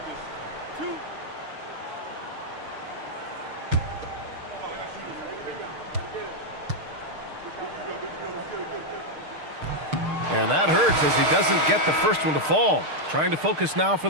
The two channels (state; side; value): late; left; 6.5 ms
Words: And that hurts as he doesn't get the first one to fall. Trying to focus now for